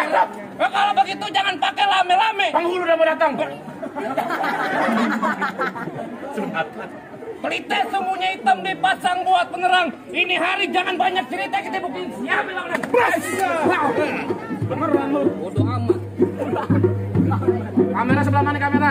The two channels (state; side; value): identical; both; correlation 1.00